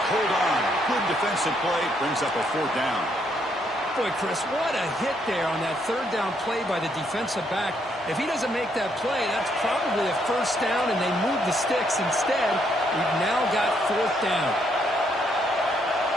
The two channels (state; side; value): normal; both; correlation 0.73